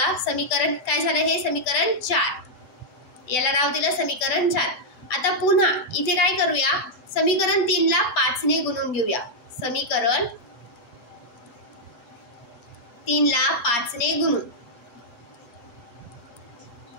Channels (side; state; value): right; late; 8.0 ms